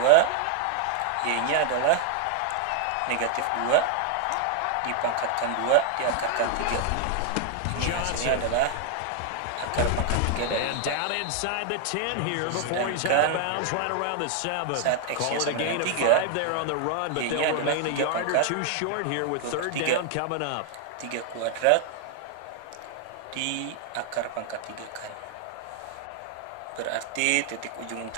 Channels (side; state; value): both; different; correlation 0.00